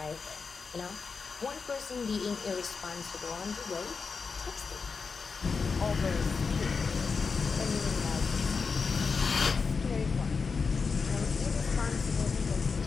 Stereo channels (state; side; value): quieter; right; 5.1 dB